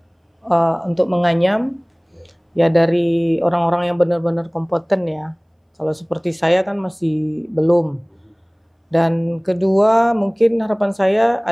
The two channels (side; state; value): both; identical; correlation 1.00